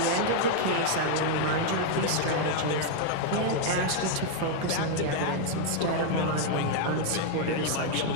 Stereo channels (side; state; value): both; different; correlation 0.00